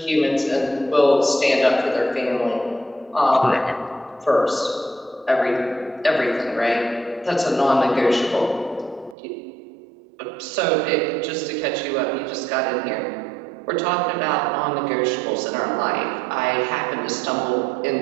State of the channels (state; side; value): drops out; left; at 9.2 s